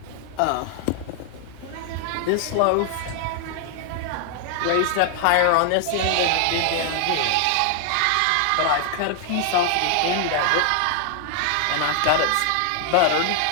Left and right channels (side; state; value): both; different; correlation 0.00